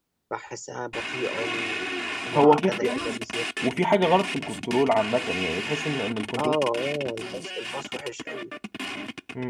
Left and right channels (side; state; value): both; identical; correlation 1.00